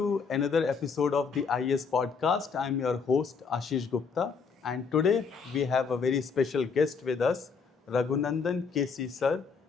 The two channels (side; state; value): right; quieter; 5.5 dB